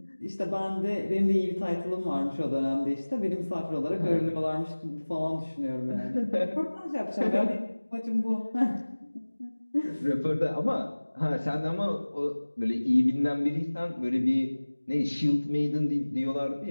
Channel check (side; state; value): both; inverted; correlation -1.00